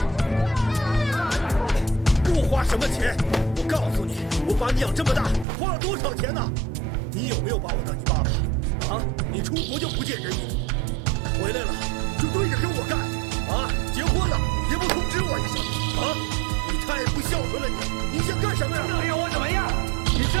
花什么钱？我告诉你，我把你养这么大，花了多少钱呢？你有没有把我当你爸爸？啊，你出国就不见人影，回来了就对着跟我干，啊，结婚了也不通知我一声，啊，你太不孝顺了你想干什么呀？到底要我怎么样？你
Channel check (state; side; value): drops out; left; at 5.5 s